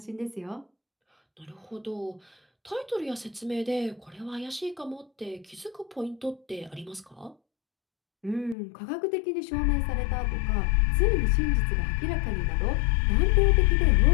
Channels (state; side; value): drops out; right; at 8.6 s